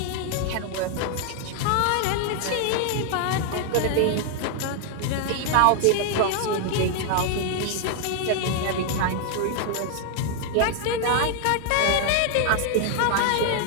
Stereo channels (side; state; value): both; different; correlation 0.00